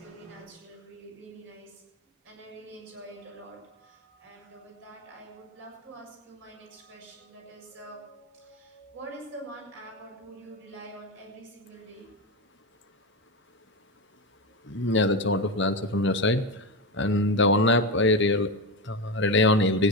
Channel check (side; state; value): both; normal; correlation 0.16